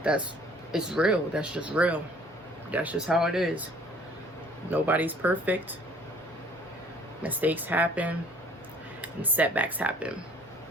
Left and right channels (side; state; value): both; normal; correlation 0.56